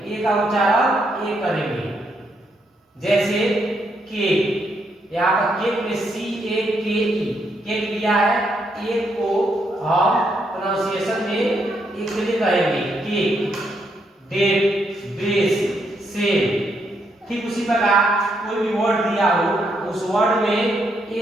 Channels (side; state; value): both; normal; correlation 0.77